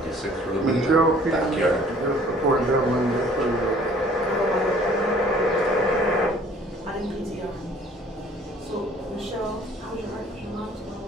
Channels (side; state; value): both; normal; correlation 0.55